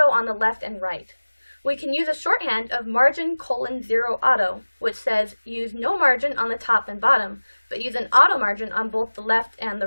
on the left and right. We can use a shorthand of margin:0 auto, which says use no margin on the top and bottom, but use an auto margin on both the left and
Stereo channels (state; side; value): inverted; both; correlation -1.00